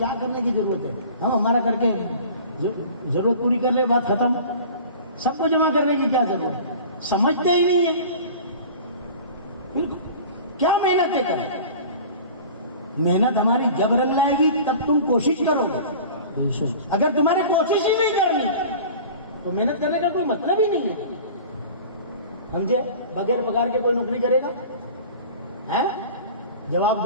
کرنے کی ضرورت ہے؟ ہم ہمارا کر کے ضرورت پوری کر لے، بات ختم. سب کو جمع کرنے کی کیا ضرورت ہے؟ سمجھتے ہی نہیں ہے. کیا محنتیں کریں؟ محنت ہماری جب رنگ لائے گی تب تم کوشش کرو گے. اگر تمہاری کوشش ہی نہیں کرنی تو محنت کرنے کا کوئی مطلب ہی نہیں ہے. سمجھے؟ بغیر پگار کے کوئی نوکری کرے گا؟ جواب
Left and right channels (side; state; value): both; inverted; correlation -0.40